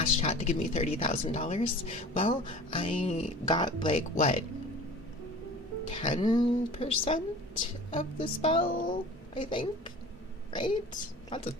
chat to give me $30,000. Well, I got, like, what, 10% of the spell, I think? Right? That's a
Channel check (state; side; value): normal; both; correlation 0.41